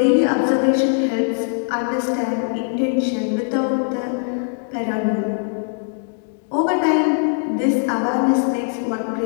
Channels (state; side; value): silent; right; 65 dB below the other